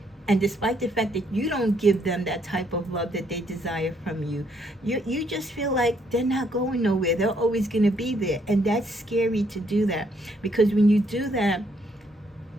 and despite the fact that you don't give them that type of love that they desire from you, you just feel like they're not going nowhere. They're always going to be there. And that's scary to do that, because when you do that,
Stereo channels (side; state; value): both; normal; correlation 0.70